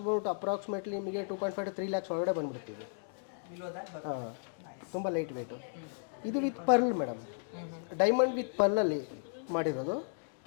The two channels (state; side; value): silent; right; digital silence